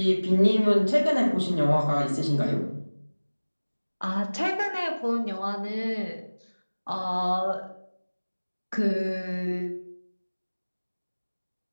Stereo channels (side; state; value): both; inverted; correlation -1.00